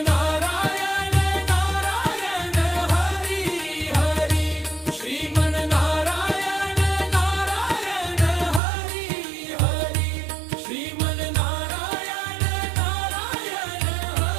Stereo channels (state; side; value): drops out; left; at 8.6 s